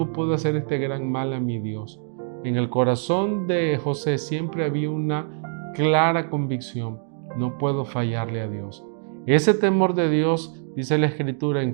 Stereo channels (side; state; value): left; silent; 60 dB below the other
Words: puedo hacer este gran mal a mi Dios? En el corazón de José siempre había una clara convicción, no puedo fallarle a Dios. Ese temor de Dios, dice la Escritura